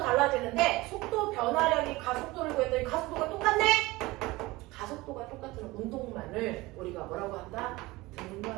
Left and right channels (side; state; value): left; quieter; 20.7 dB